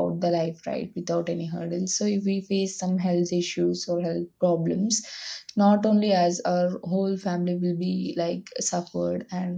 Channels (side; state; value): both; identical; correlation 1.00